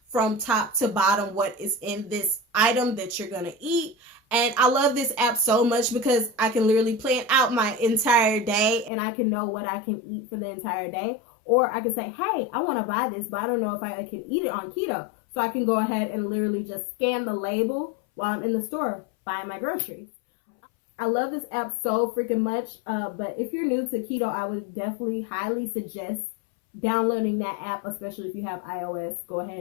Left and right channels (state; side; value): drops out; right; at 8.9 s